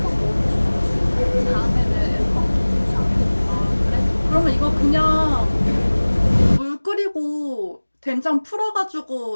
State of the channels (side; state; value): both; inverted; correlation -1.00